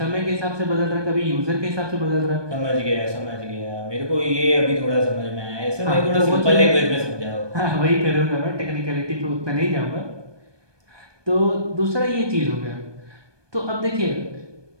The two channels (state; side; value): late; left; 1.2 ms